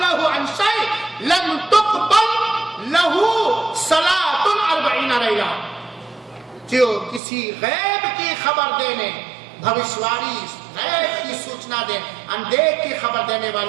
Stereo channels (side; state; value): left; drops out; at 7.2 s